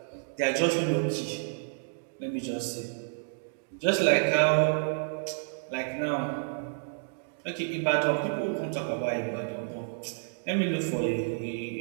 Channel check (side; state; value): left; silent; digital silence